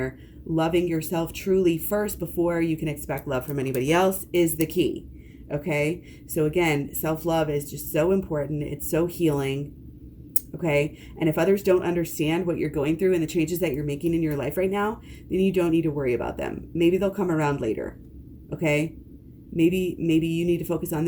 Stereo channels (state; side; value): identical; both; correlation 1.00